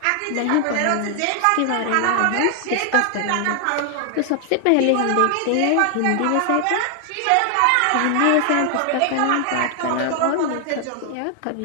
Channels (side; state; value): both; different; correlation 0.00